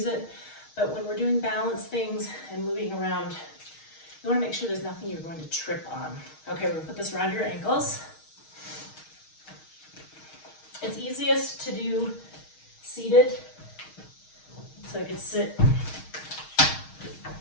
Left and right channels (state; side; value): late; right; 6.4 ms